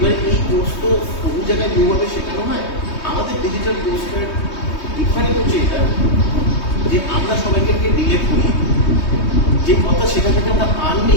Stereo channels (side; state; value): right; late; 3.2 ms